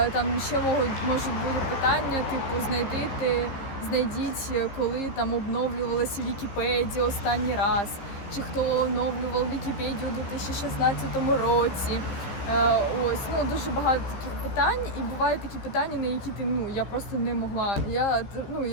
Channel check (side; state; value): right; late; 15 ms